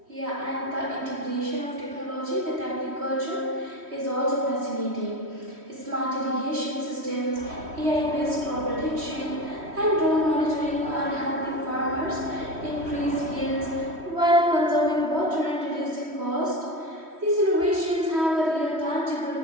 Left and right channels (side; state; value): left; late; 3.1 ms